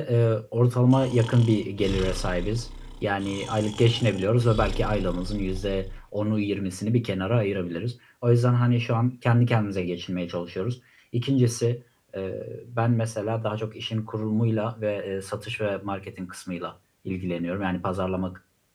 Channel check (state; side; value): identical; both; correlation 1.00